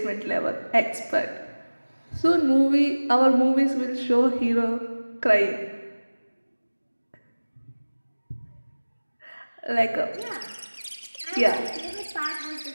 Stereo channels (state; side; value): inverted; both; correlation -1.00